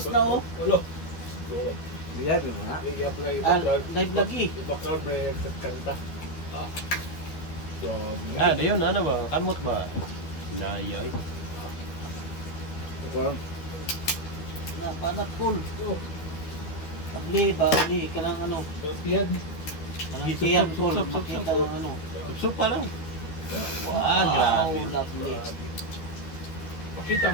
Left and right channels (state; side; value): late; right; 12 ms